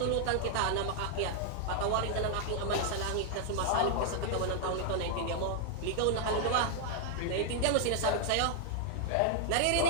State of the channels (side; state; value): both; different; correlation 0.00